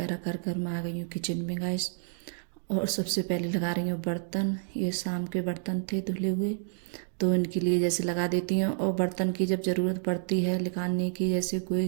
कर कर मैं आ गई हूँ किचन में गाइस। और सबसे पहले लगा रही हूँ बर्तन। ये शाम के बर्तन थे धुले हुए, तो इनके लिए जैसे लगा देती हूँ। और बर्तन की जब ज़रूरत पड़ती है निकालने की, जैसे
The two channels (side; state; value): left; silent; digital silence